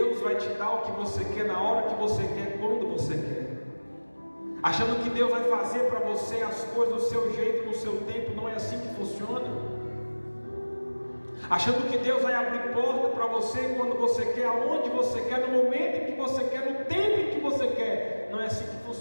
vai te dar o que você quer, na hora que você quer, quando você quer, achando que Deus vai fazer para você as coisas do seu jeito, no seu tempo. Não é assim que funciona. Achando que Deus vai abrir porta para você quando você quer, aonde você quer, no momento em que você quer, no tempo em que você quer. Não é assim que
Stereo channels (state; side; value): inverted; both; correlation -1.00